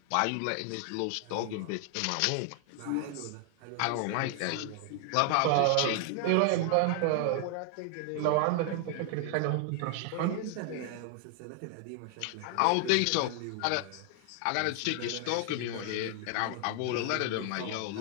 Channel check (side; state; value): both; different; correlation 0.00